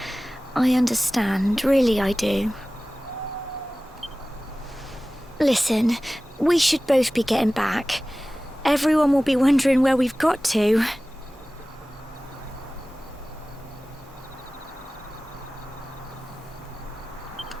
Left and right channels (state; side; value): normal; both; correlation 0.97